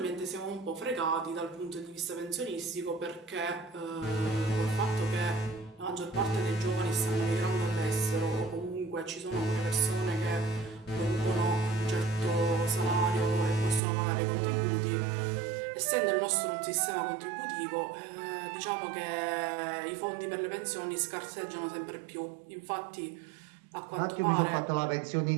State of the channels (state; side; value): drops out; left; at 13.8 s